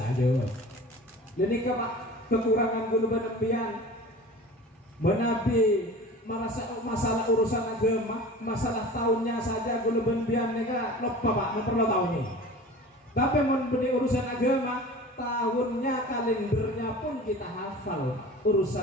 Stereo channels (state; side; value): normal; both; correlation 0.39